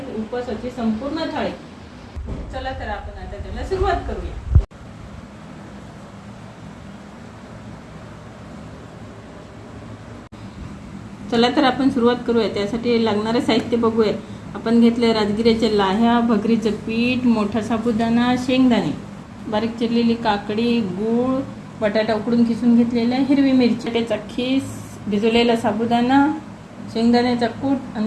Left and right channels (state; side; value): identical; both; correlation 1.00